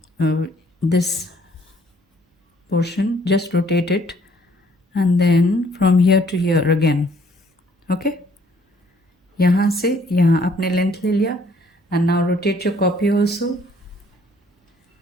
this portion, just rotate it and then from here to here again. Okay, यहाँ से यहाँ आपने लेंथ ले लिया and now rotate your copy also,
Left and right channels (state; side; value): normal; both; correlation 0.62